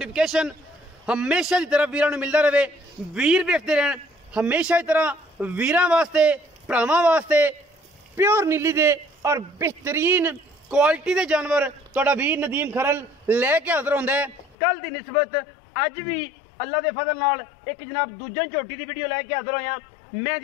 हमेशा की तरह वीरां नूं मिलदा रहे। वीर वेखदे रहन हमेशा की तरह वीरां वास्ते भरावां वास्ते प्योर नीली दे और बेहतरीन क्वालिटी के जानवर तुहाडा वीर नदीम खरल लैके हाज़र होंदा है। कल की निस्बत अज भी अल्लाह के फजल नाल एक जनाब दूजन झोटी की वीडियो लैके हाज़र होया। मैं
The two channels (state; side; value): drops out; right; at 14.6 s